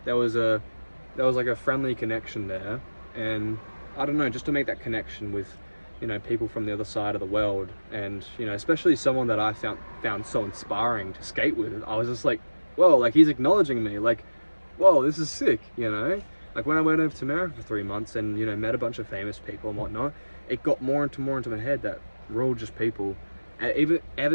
there was like a friendly connection there. And I don't know, just to make that connection with, you know, people from the other side of the world, and you know, especially someone that I found so inspiring to skate with, I was just like, whoa, like he's acknowledging me, like, whoa, this is sick, you know? Like when I went over to America for 3 months and, you know, met a bunch of famous people and whatnot, it got more into my head that we're all just people. And ever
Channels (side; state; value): both; inverted; correlation -1.00